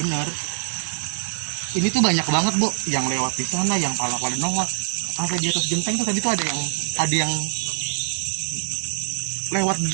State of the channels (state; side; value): silent; left; digital silence